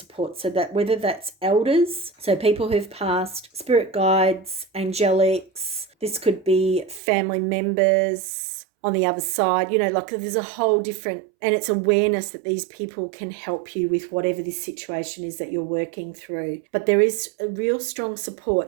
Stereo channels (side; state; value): left; drops out; at 7.0 s